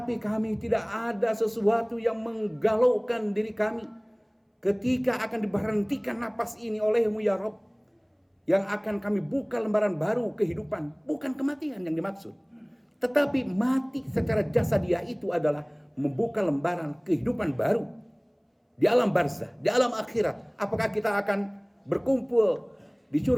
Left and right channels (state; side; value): identical; both; correlation 1.00